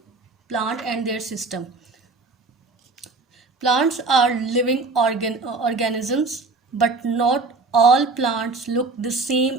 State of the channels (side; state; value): left; quieter; 3.8 dB